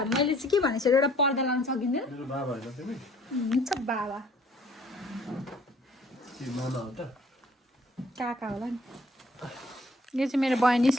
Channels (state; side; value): normal; both; correlation 0.58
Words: मैले चाहिँ के भनेको छु एउटा पर्दा लाउन सकिँदैन हुन्छ बाबा काका होला नि यो चाहिँ मेरो बहिनी